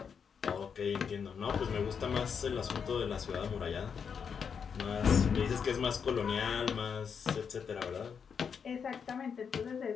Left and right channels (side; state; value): right; quieter; 6.7 dB